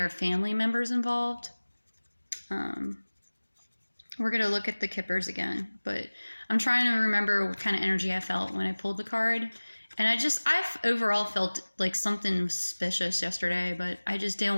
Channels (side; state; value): both; inverted; correlation -1.00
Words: family members involved. We're going to look at the Kippers again, but I'm trying to remember what kind of energy I felt when I pulled the card. And I overall felt like something was suspicious yesterday, but I just didn't